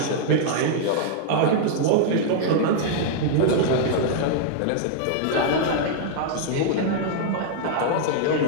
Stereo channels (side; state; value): both; different; correlation -0.01